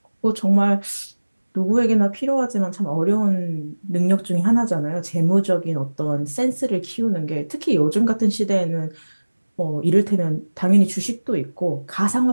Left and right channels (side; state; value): both; inverted; correlation -1.00